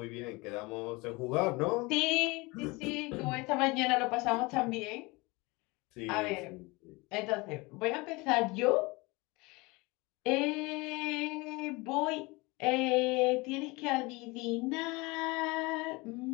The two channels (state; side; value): quieter; right; 24.7 dB